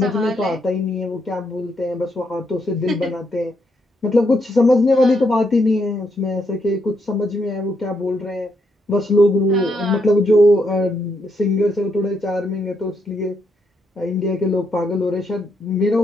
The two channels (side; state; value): both; normal; correlation 0.77